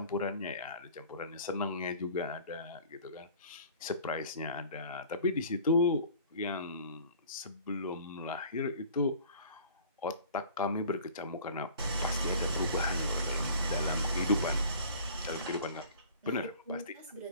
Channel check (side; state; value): both; inverted; correlation -0.47